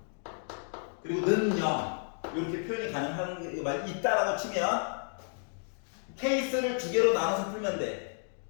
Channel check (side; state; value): right; silent; 57 dB below the other